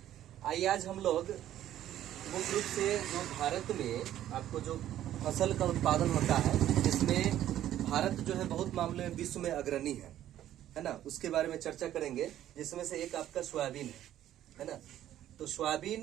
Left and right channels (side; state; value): left; quieter; 12.2 dB